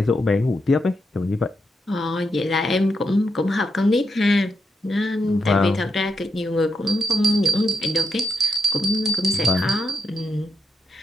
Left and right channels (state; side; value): normal; both; correlation 0.82